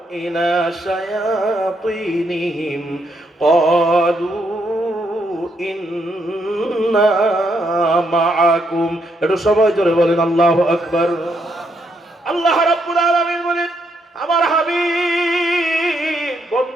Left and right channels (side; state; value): both; normal; correlation 0.76